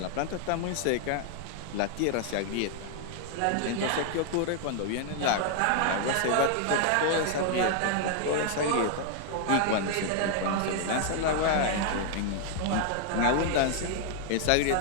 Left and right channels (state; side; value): different; both; correlation 0.00